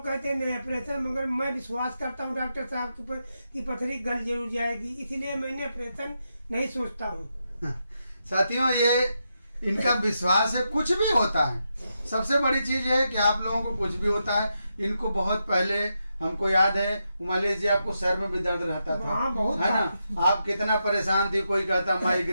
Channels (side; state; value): both; inverted; correlation -0.85